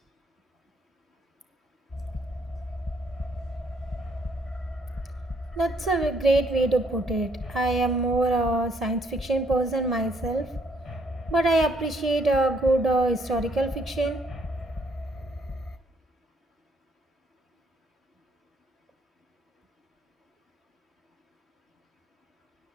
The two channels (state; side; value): normal; both; correlation 0.68